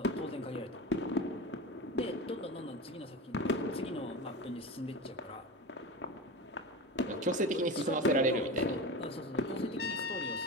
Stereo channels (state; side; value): normal; both; correlation 0.27